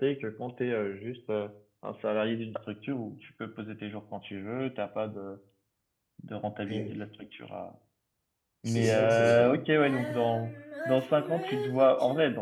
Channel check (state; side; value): identical; both; correlation 1.00